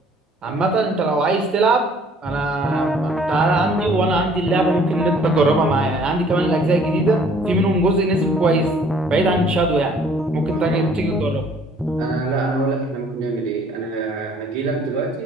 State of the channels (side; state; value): both; normal; correlation 0.57